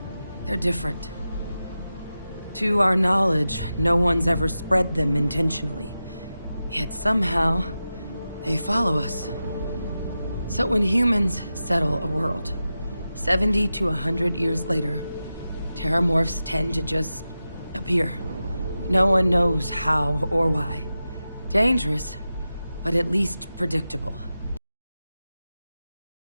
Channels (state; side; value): inverted; both; correlation -0.92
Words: They're different. To our knowledge, no one's ever spread them intentionally. Yet somehow, they follow us. So when humans settle a world, 70 to 100 years later, terramorphs tend to just appear. No one knows how or why. Dangerous, but at least predictable.